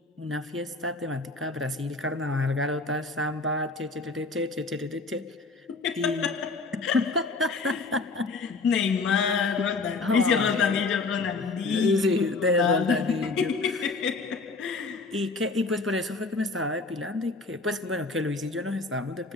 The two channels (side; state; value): right; quieter; 3.7 dB